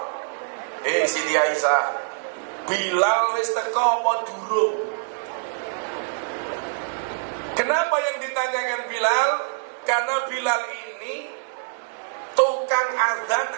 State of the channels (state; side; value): silent; left; digital silence